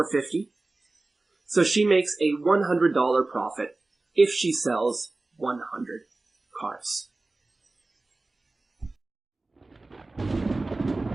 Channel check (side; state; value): left; quieter; 3.2 dB